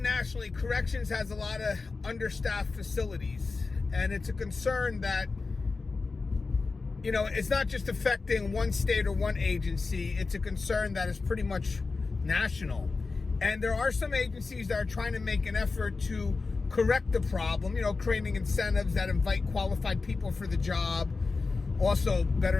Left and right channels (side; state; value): right; quieter; 4.1 dB